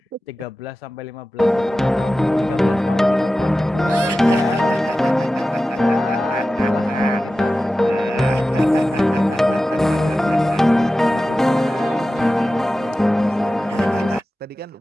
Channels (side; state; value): both; normal; correlation 0.95